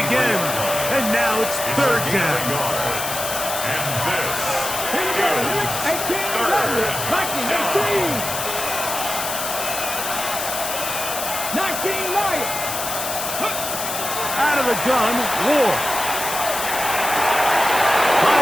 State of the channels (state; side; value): noise; left; hiss, 4 dB below the sound